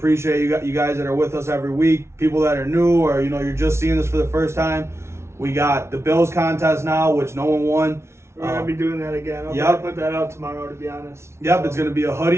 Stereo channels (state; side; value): late; left; 0.13 ms